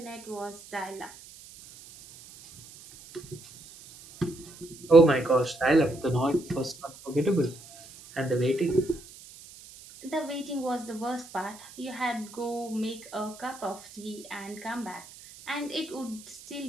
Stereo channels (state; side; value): noise; right; hiss, 19 dB below the sound